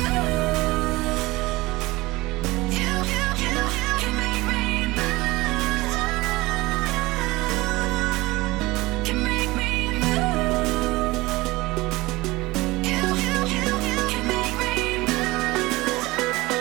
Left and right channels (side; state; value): left; quieter; 20.7 dB